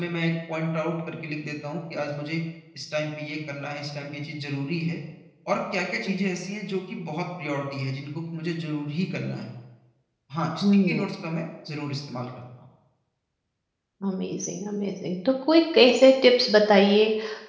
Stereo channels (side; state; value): both; identical; correlation 1.00